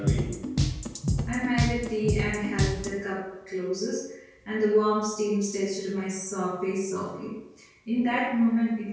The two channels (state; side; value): identical; both; correlation 1.00